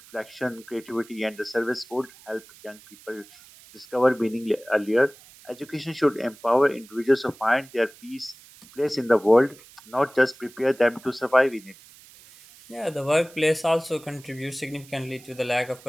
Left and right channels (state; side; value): noise; right; hiss, 23 dB below the sound